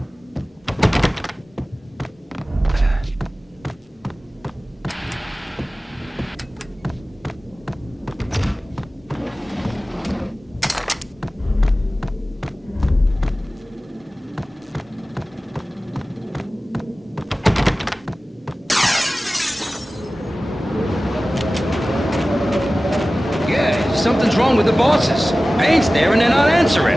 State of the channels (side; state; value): both; normal; correlation 0.96